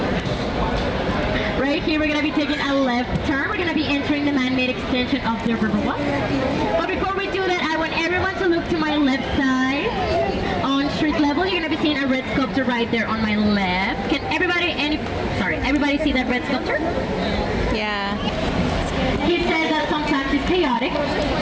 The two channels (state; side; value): identical; both; correlation 1.00